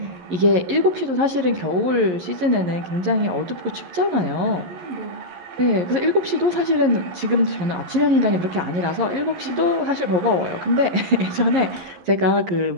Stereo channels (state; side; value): late; left; 11 ms